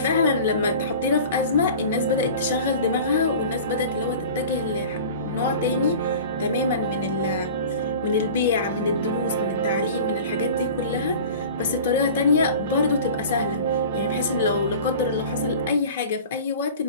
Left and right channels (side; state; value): both; inverted; correlation -0.39